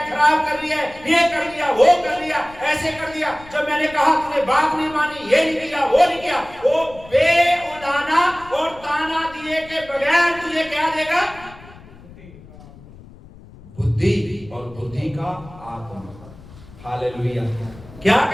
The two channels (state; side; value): noise; left; rumble, 20 dB below the sound